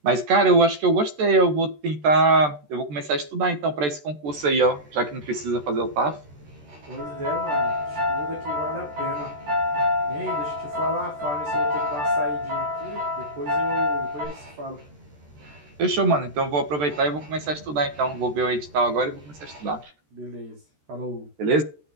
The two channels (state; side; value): late; left; 13 ms